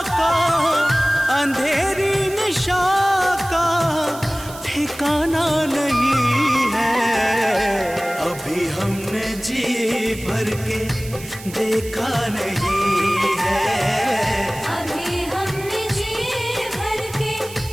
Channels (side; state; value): right; noise; hiss, 16 dB below the sound